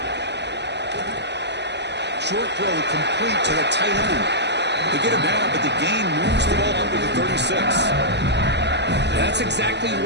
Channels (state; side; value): late; left; 0.50 ms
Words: Short throw complete to the tight end. They get him down, but the gain moves the ball up to the 36. That's exactly